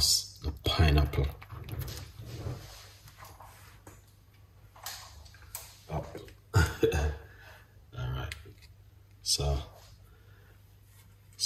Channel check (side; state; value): both; identical; correlation 1.00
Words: the pineapple. Oh. Alright, so